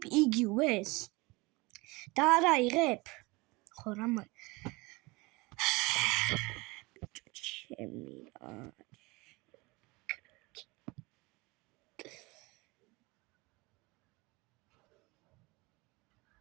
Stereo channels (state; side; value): quieter; left; 24.2 dB